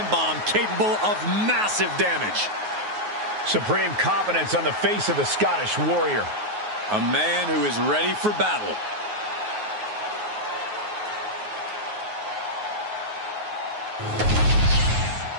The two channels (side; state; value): left; late; 9.4 ms